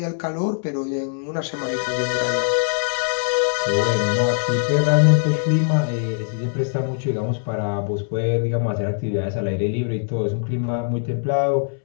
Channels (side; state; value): right; silent; 63 dB below the other